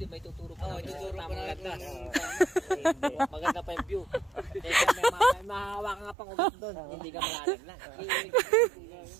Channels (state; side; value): drops out; left; at 6.2 s